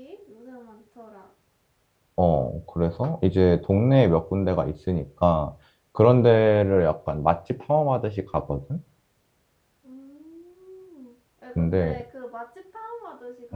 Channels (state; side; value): identical; both; correlation 1.00